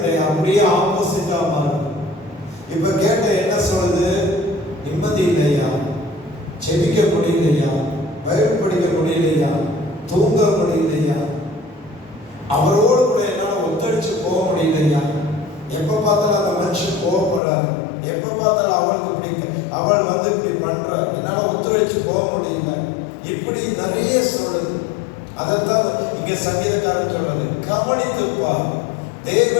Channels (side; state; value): right; drops out; at 17.4 s